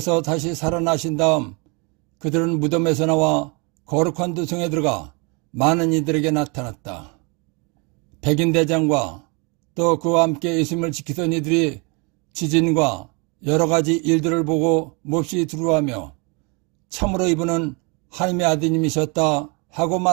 다시 살아나신 다음 그들은 무덤에서 나와 거룩한 도성에 들어가 많은 이들에게 나타났다. 백인대장과 또 그와 함께 예수님을 지키던 이들이 지진과 여러 가지 일들을 보고 몹시 두려워하며 참으로 이분은 하나님의 아드님이셨다 하고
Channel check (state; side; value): quieter; left; 31.5 dB